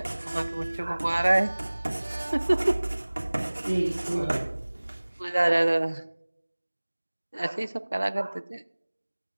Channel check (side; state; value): both; inverted; correlation -1.00